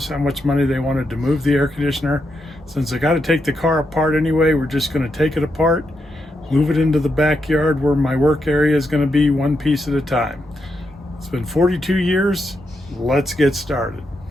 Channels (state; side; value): normal; both; correlation 0.83